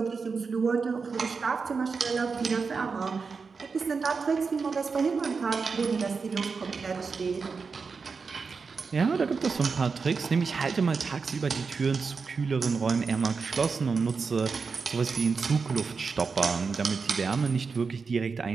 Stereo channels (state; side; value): quieter; left; 5.0 dB